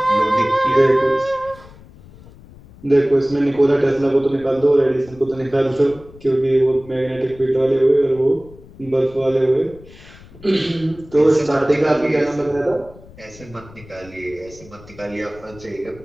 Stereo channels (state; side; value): noise; left; rumble, 21 dB below the sound